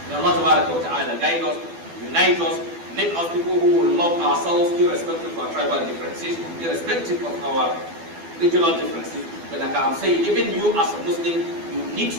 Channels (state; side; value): late; left; 12 ms